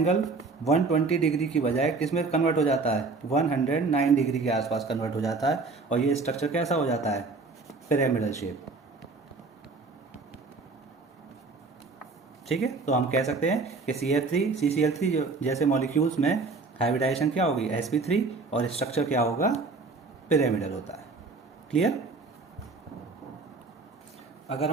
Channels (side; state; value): left; quieter; 4.0 dB